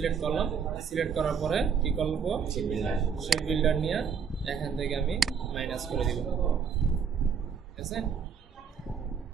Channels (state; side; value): quieter; left; 6.6 dB